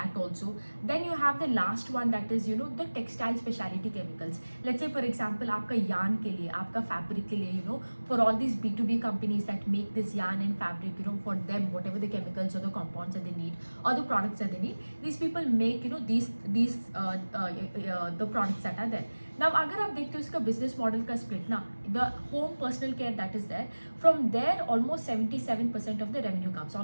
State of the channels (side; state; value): both; inverted; correlation -1.00